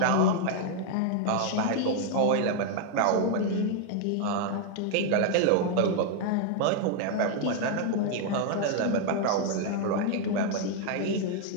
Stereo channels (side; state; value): both; different; correlation 0.00